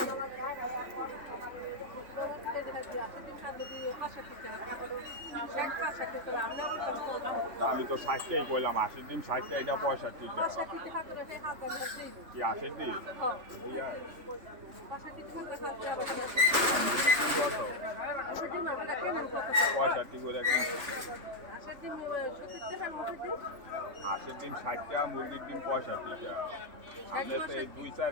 আমি তো 60 টাকাই কইলাম, 80 ডিম 60 টাকা, এটা 65 টাকা। কি 80 ডিম? ইয়া 65 করে কিনছি। 80 ডিম 60 টাকা, মুরগির ডিম 65 টাকা। আমরা তো এই 2-4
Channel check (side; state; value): left; late; 3.3 ms